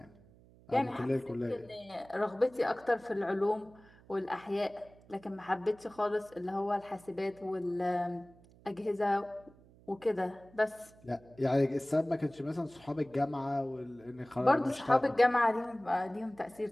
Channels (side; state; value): right; noise; hum, 25 dB below the sound